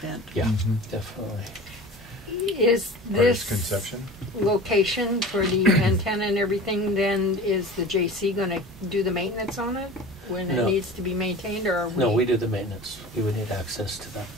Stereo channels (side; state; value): both; normal; correlation 0.38